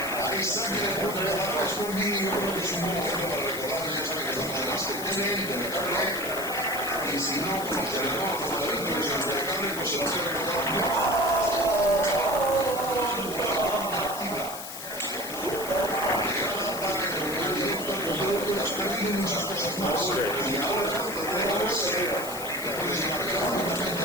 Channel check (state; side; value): noise; left; hiss, 10 dB below the sound